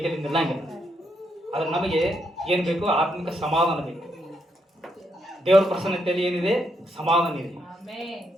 ನಿಲ್ಲಂಗಿಲ್ಲ. ಆದರೆ ನಮಗೆ ಏನು ಬೇಕು? ಆತ್ಮಿಕ ಸಮಾಧಾನ ಬೇಕು. ದೇವರ ಪ್ರಸನ್ನತೆಯಲ್ಲಿ ಏನಿದೆ? ಸಮಾಧಾನ ಇದೆ.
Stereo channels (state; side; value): normal; both; correlation 0.78